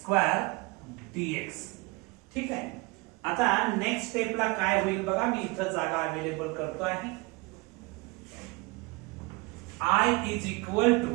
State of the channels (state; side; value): quieter; left; 25.5 dB